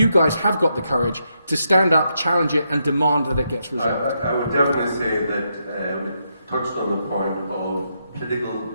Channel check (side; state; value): both; inverted; correlation -0.80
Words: guys have got the courage to stand up, challenge it, and demand that it gets resolved. I would definitely say that we touched on the point of political